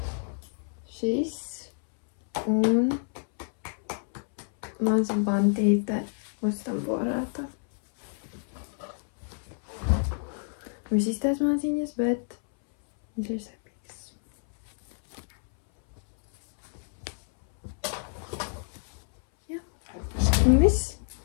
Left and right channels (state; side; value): silent; right; 59 dB below the other